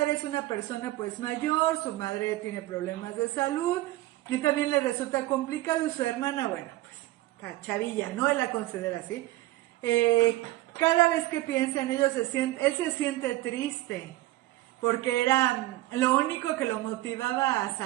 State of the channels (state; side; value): quieter; left; 17.3 dB